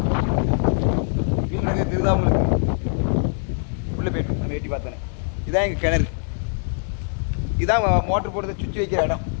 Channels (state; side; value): silent; right; digital silence